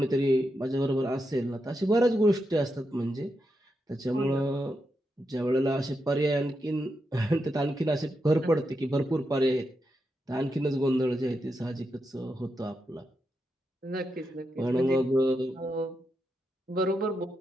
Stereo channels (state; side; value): normal; both; correlation 0.85